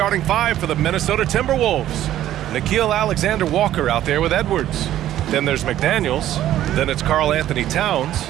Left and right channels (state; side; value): quieter; left; 12.7 dB